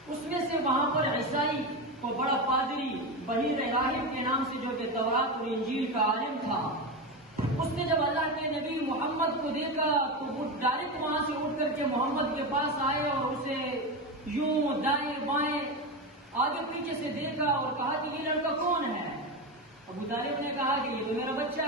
اس میں سے وہاں پر عیسائی کو بڑا پادری بحیر راہب کے نام سے، جو کہ تورات اور انجیل کا عالم تھا، اس نے جب اللہ کے نبی محمد کو دیکھا تو وہ ڈائریکٹ وہاں سے اٹھ کر کے محمد کے پاس آئے اور اسے یوں دائیں بائیں آگے پیچھے سے دیکھا اور کہا کہ یہ لڑکا کون ہے؟ ابو طالب نے کہا کہ یہ تو میرا بچہ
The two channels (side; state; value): both; normal; correlation 0.17